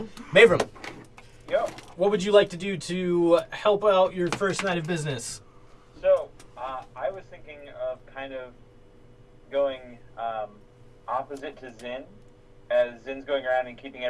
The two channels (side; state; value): both; identical; correlation 1.00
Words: Mavram, Yo. what would you like to do to help out your first night of business? So, I was thinking of kind of going opposite to Zin. As Zin's going around and keeping